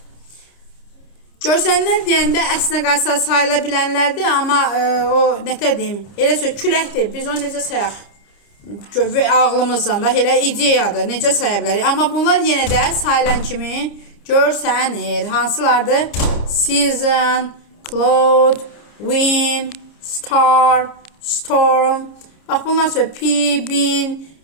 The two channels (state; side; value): late; right; 29 ms